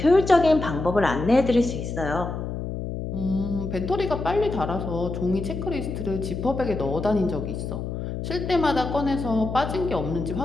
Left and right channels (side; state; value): left; noise; hum, 5 dB below the sound